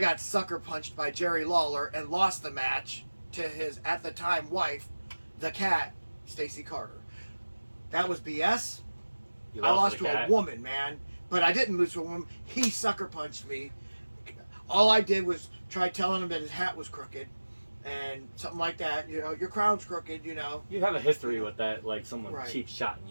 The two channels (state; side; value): inverted; both; correlation -1.00